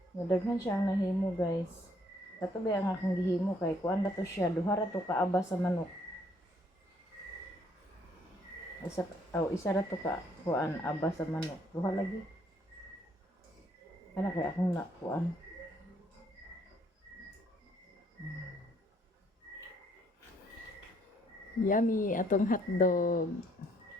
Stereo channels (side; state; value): both; normal; correlation 0.66